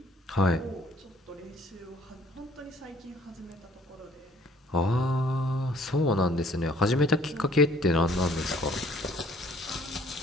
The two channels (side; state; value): both; normal; correlation 0.58